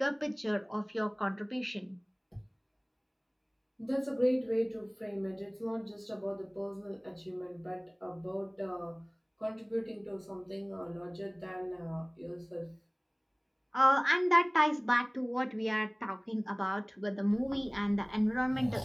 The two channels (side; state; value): both; identical; correlation 1.00